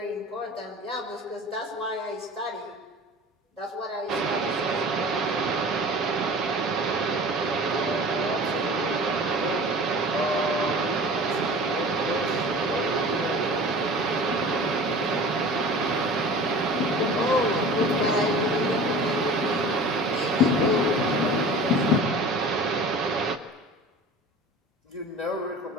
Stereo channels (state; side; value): normal; both; correlation 0.40